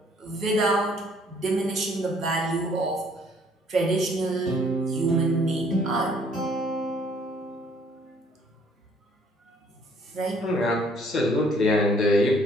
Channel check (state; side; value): normal; both; correlation 0.61